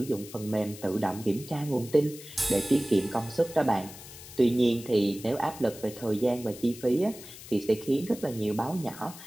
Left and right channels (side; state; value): left; noise; hiss, 16 dB below the sound